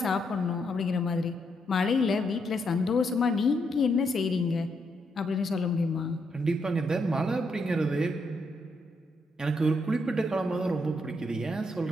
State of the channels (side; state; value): both; normal; correlation 0.78